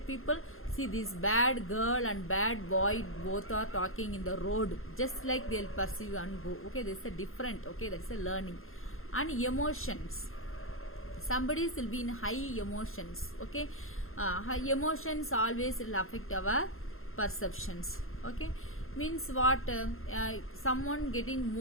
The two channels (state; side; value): late; right; 0.61 ms